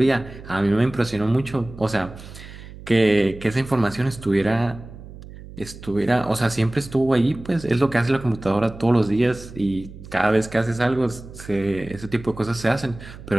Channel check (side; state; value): right; noise; hum, 16 dB below the sound